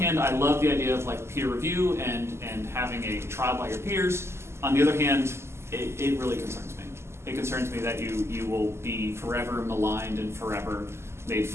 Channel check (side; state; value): left; late; 0.13 ms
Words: I love the idea of like peer review and having a trial by your peers. On the other hand, it really concerns me. It concerns me that you will be forever maligned and forever made